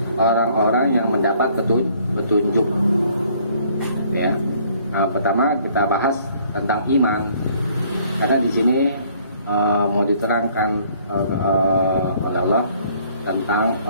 orang-orang yang mendapat petunjuk ya. Nah, pertama kita bahas tentang iman, karena di sini mau diterangkan oleh Allah tentang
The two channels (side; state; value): both; inverted; correlation -0.61